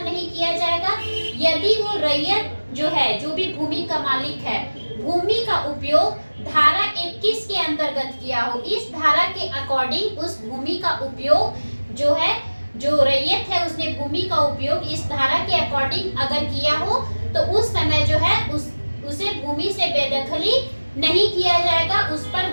नहीं किया जाएगा, यदि वो रैयत जो है, जो भी भूमि का मालिक है, भूमि का उपयोग धारा 21 के अंतर्गत किया हो, इस धारा के अकॉर्डिंग उस भूमि का उपयोग जो है, जो रैयत है उसने भूमि का उपयोग इस धारा के अकॉर्डिंग अगर किया हो, तो उस समय जो है उसे भूमि से बेदखली नहीं किया जाएगा, उस पर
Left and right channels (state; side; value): inverted; both; correlation -1.00